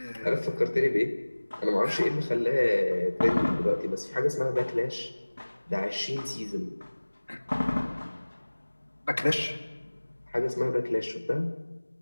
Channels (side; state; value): both; inverted; correlation -1.00